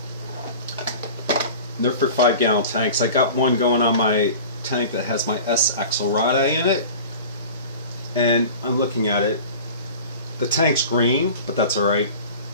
They're for 5-gallon tanks. I got one going on my tank that has my S Axelrad in it. And I'm looking at it. The tank's green, but that's alright.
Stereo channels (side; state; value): both; inverted; correlation -0.38